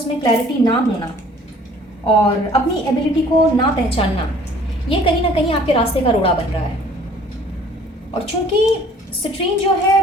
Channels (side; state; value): both; normal; correlation 0.54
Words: में क्लैरिटी ना होना और अपनी एबिलिटी को ना पहचानना, ये कहीं ना कहीं आपके रास्ते का रोड़ा बन रहा है। और चूंकि सिट्रीन जो है